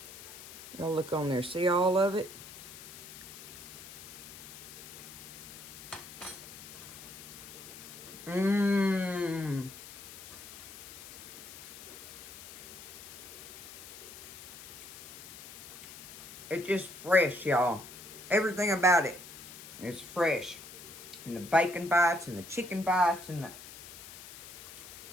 Y'all look on there. See all of it? Mmm. It's just fresh, y'all. Everything about it is fresh. And the bacon bites and the chicken bites and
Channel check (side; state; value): left; noise; hiss, 14 dB below the sound